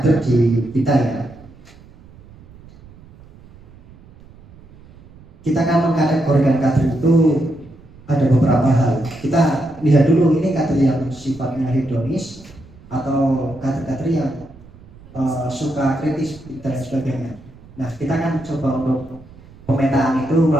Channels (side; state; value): right; noise; rumble, 23 dB below the sound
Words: di kita ya. Kita kan mengkategorikan kader itu ada beberapa hal. Kita lihat dulu ini kader yang sifatnya hedonis atau kader-kader yang suka kritis dan sebagainya. Nah, kita kan coba untuk pemetaan itu